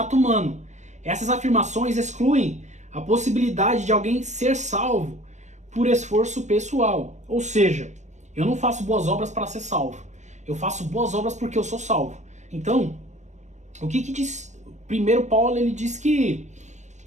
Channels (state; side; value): late; left; 0.34 ms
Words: humano. Essas afirmações excluem a possibilidade de alguém ser salvo por esforço pessoal. Ou seja, eu não faço boas obras para ser salvo. Eu faço boas obras porque eu sou salvo. Então, o que diz? Primeiro Paulo ele diz que